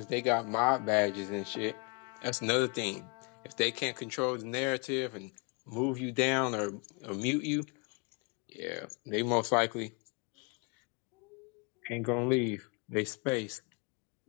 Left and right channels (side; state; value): right; quieter; 33.4 dB